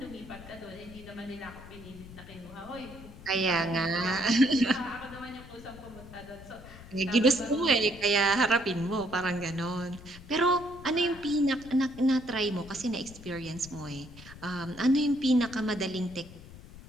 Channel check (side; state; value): left; noise; rumble, 17 dB below the sound